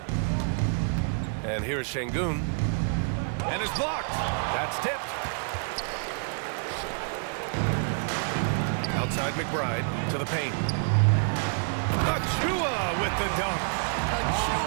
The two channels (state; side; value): silent; left; 59 dB below the other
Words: And here's Şengün. And it's blocked. That's tipped. Outside McBride to the paint. Achua with the dunk.